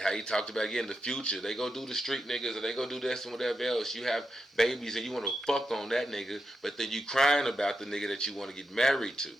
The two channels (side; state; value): both; normal; correlation 0.86